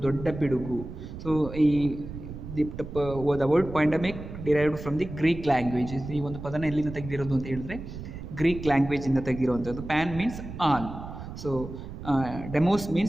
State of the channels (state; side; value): noise; right; rumble, 11 dB below the sound